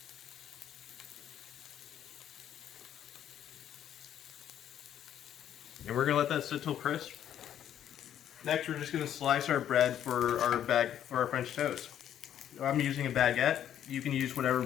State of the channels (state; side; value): quieter; right; 10.4 dB